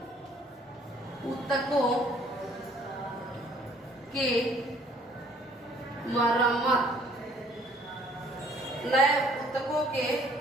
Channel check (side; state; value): both; normal; correlation 0.59